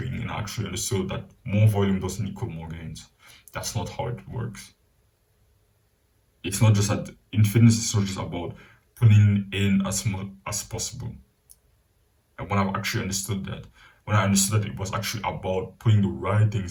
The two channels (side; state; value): both; identical; correlation 1.00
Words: and I actually understood that more volume doesn't equal more gains. That's not how it works. It's not just that in fitness, it's not just about putting in as much as possible. And when I've actually understood that, when I understood that it was actually about putting the right